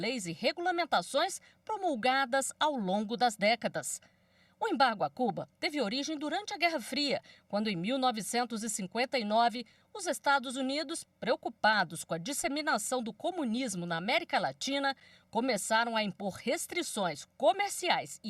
e regulamentações promulgadas ao longo das décadas. O embargo a Cuba teve origem durante a Guerra Fria, quando em 1959 os Estados Unidos, preocupados com a disseminação do comunismo na América Latina, começaram a impor restrições comerciais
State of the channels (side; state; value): both; identical; correlation 1.00